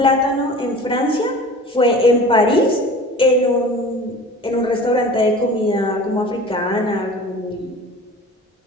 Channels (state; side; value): normal; both; correlation 0.40